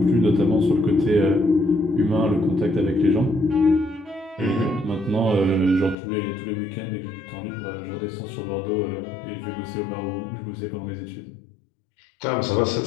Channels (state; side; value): drops out; right; at 6.0 s